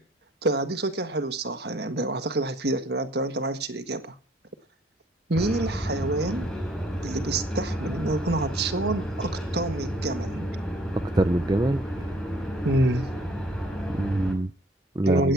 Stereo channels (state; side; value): normal; both; correlation 0.58